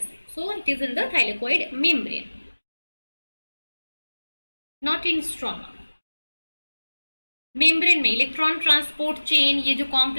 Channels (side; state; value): both; inverted; correlation -1.00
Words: so it is in the thylakoid membrane, not in stroma. Membrane में इलेक्ट्रॉन ट्रांसपोर्ट चेन, ये जो